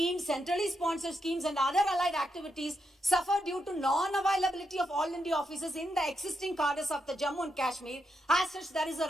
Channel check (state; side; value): normal; both; correlation 0.83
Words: centrally sponsored schemes and other allied activities suffer due to non-availability of all India offices in the existing cadres of the Jammu and Kashmir. As such, there is a